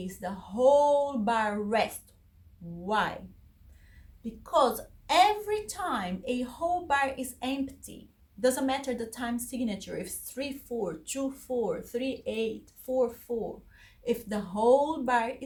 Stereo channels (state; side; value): identical; both; correlation 1.00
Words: the whole bar rest. Why? Because every time a whole bar is empty, doesn't matter the time signature, if it's 3-4, 2-4, 3-8, 4-4, if the whole bar